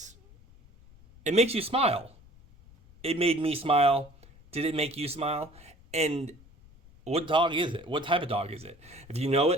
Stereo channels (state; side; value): noise; left; rumble, 25 dB below the sound